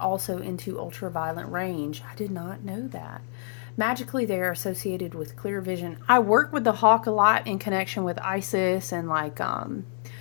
into ultraviolet range. I did not know that. Magically, they are associated with clear vision. I work with the hawk a lot in connection with Isis and like,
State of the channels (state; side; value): silent; right; 57 dB below the other